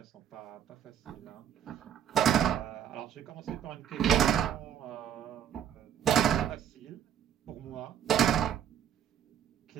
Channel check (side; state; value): left; quieter; 9.5 dB